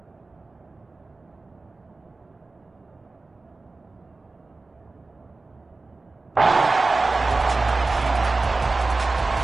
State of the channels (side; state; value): left; quieter; 3.5 dB